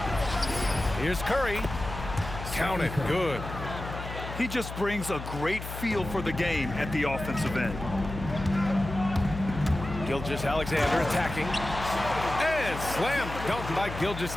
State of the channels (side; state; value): left; noise; hum, 9 dB below the sound